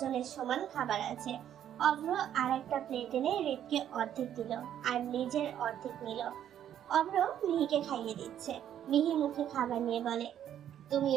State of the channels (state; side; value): quieter; left; 10.4 dB